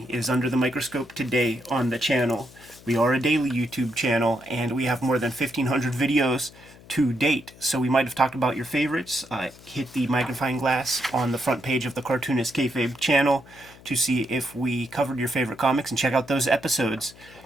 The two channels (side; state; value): left; noise; hum, 22 dB below the sound